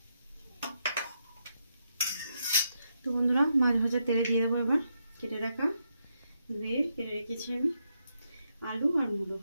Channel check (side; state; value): both; inverted; correlation -0.81